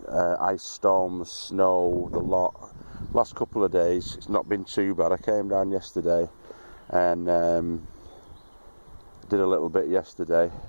ice storms, snow, the lot. Last couple of days it's not been too bad. I came down yesterday and did a little bit yesterday.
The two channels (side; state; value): both; inverted; correlation -1.00